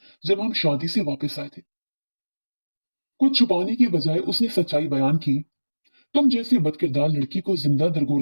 जब हम शादी से वापस आए थे। कुछ छुपाने की बजाय उसने सच्चाई बयान की। तुम जैसे बदकिरदार लड़की को जिंदा दरगोर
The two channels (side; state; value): both; inverted; correlation -1.00